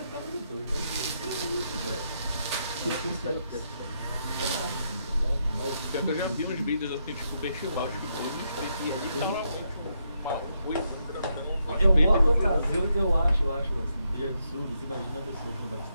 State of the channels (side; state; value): both; inverted; correlation -0.80